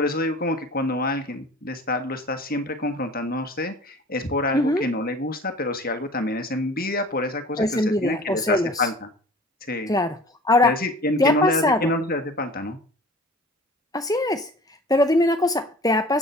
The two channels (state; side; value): normal; both; correlation 0.44